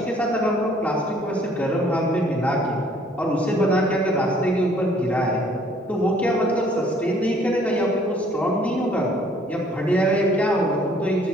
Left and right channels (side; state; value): both; normal; correlation 0.60